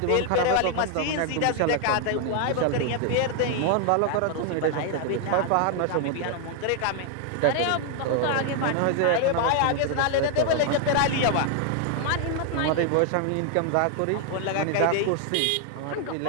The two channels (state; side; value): different; both; correlation 0.00